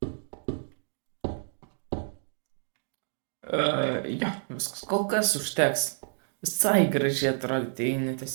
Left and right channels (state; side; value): silent; left; digital silence